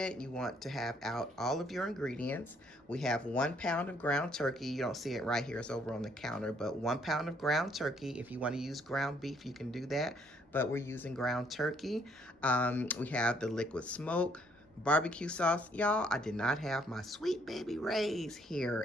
you want to have out all of your ingredients. We have 1 pound of ground turkey. You don't see it right here, it's over on the counter, but 1 pound of ground turkey. If you want to use ground beef, you can do that, but we're using ground turkey. We have the liquid smoke, barbecue sauce. Y'all, I did not have my Sweet Baby Ray's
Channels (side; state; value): both; normal; correlation 0.67